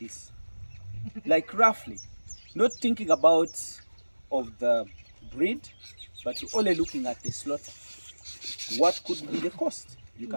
Like roughly, not thinking about of the breed, but you're only looking at the slaughter. What could be the cost? You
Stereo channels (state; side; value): inverted; both; correlation -1.00